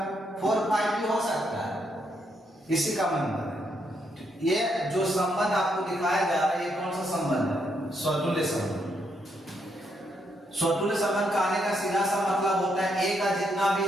4 5 भी हो सकता है इसी का मेंबर है। ये जो संबंध आपको दिखाया जा रहा है ये कौन सा संबंध है? स्वतुल्य संबंध। स्वतुल्य संबंध का आने का सीधा सा मतलब होता है ए का जितना भी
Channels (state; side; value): normal; both; correlation 0.77